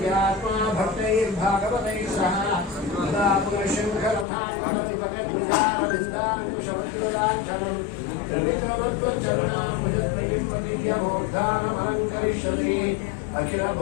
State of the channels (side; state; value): right; drops out; at 4.2 s